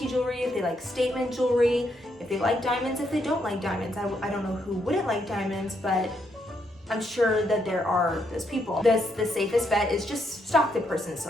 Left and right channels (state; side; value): normal; both; correlation 0.76